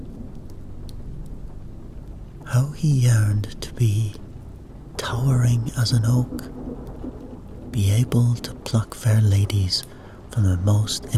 How he yearned to be towering as an oak, be able to pluck fair ladies from the most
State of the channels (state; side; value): identical; both; correlation 1.00